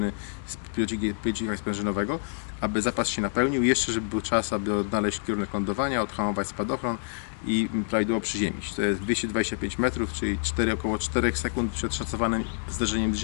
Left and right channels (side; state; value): right; silent; digital silence